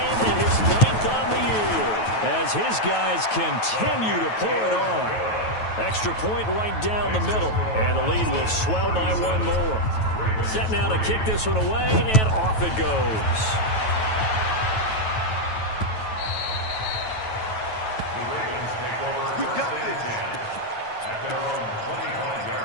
and his 9th on the year, as his guys continue to pour it on. Extra point right down the middle, and the lead will swell by 1 more. Set now to kick this one away, and off it goes. The Ravens take over We got 1st and this. 10 at their own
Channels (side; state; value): right; late; 9.2 ms